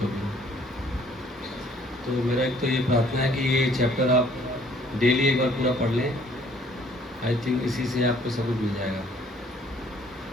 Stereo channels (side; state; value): both; normal; correlation 0.59